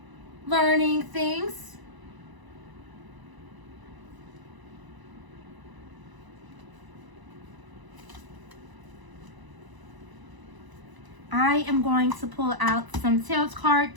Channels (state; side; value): late; left; 1.0 ms